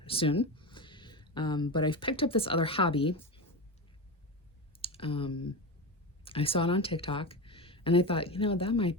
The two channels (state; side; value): normal; both; correlation 0.21